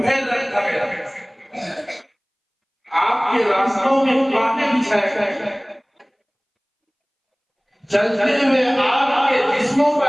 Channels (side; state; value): both; identical; correlation 1.00